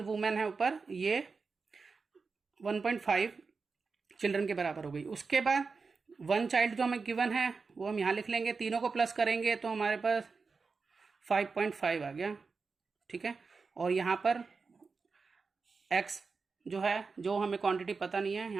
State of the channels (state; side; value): quieter; left; 4.6 dB